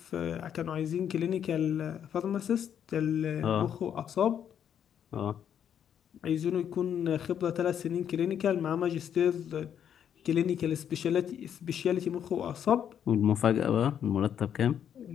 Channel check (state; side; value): quieter; right; 9.0 dB